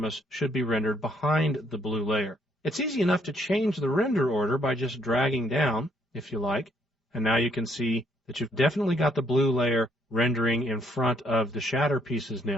us should be rendered behind the blue layer. It's easy enough to change the render order by just dragging down, if you like. And now you can see that you've definitely got the blue layer rendering in front of the shatter pieces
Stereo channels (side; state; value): both; normal; correlation 0.68